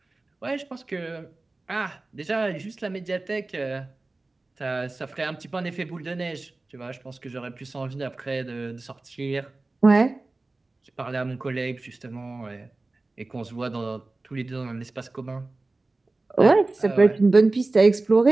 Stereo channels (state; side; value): quieter; left; 3.2 dB